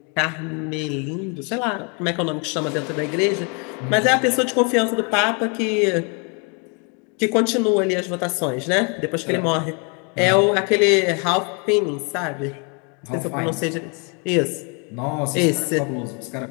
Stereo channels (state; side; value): quieter; right; 35.3 dB